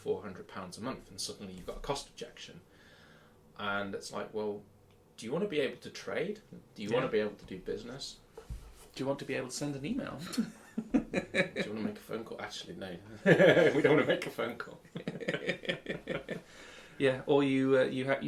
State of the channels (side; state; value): both; identical; correlation 1.00